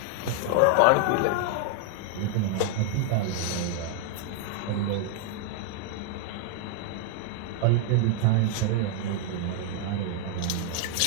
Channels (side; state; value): both; different; correlation 0.00